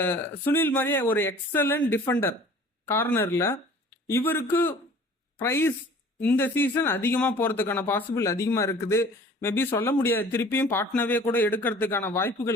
சுனில் மாதிரியே ஒரு எக்ஸலண்ட் டிஃபெண்டர் கார்னரில். இவருக்கு ப்ரைஸ் இந்த சீசன் அதிகமாக போகிறதுக்கான பாசிபிள் அதிகமாக இருக்குது. மேபி சொல்ல முடியாது, திருப்பியும் பாட்னாவே கூட எடுக்கிறதுக்கான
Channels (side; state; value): both; normal; correlation 0.48